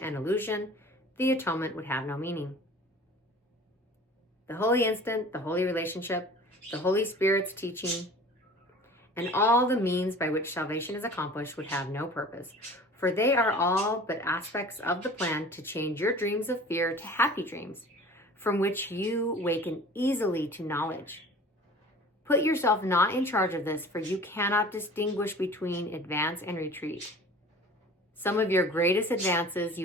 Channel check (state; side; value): normal; both; correlation 0.43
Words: and illusion, the atonement would have no meaning. The holy instant, the holy relationship, the Holy Spirit's teaching, and all the means by which salvation is accomplished would have no purpose, for they are all but aspects of the plan to change your dreams of fear to happy dreams, from which you waken easily to knowledge. Put yourself not in charge of this, for you cannot distinguish between advance and retreat. Some of your greatest advances